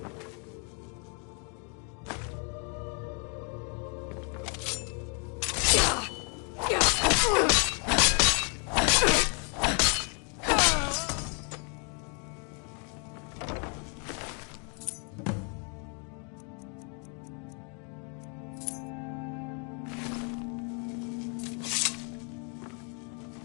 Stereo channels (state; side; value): quieter; right; 37.9 dB